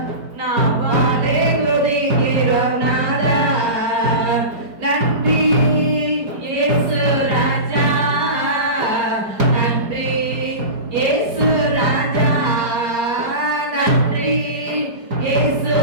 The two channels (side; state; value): left; late; 4.7 ms